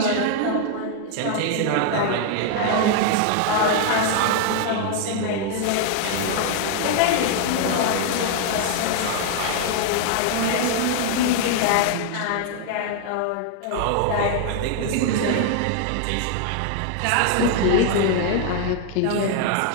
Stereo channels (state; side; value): different; both; correlation 0.00